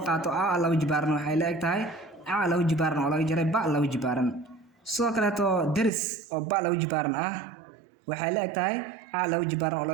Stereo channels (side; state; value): left; drops out; at 5.9 s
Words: qaato laba jibaaran waxay leegtahay laba jibaaran oo laga jaray ba laba jibaaran sidoo kale deris oo ba laba jibaaran waxay leegtahay laba jibaaran oo